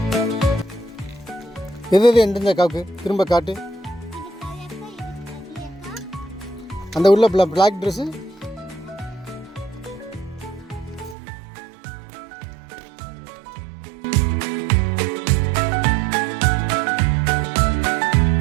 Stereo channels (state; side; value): drops out; left; at 11.2 s